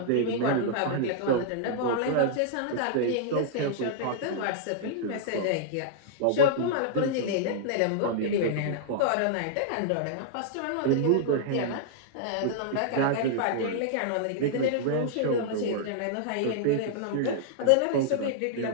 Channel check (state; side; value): different; both; correlation -0.01